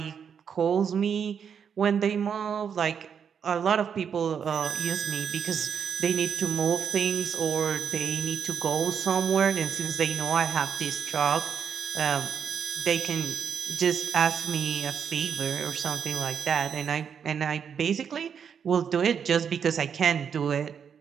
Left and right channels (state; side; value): quieter; left; 7.3 dB